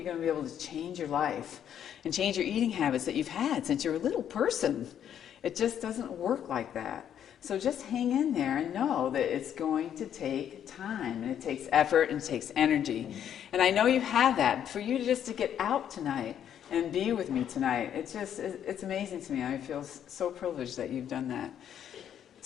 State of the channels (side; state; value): right; quieter; 9.6 dB